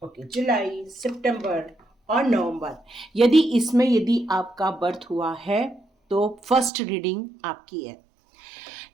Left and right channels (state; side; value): drops out; left; at 6.7 s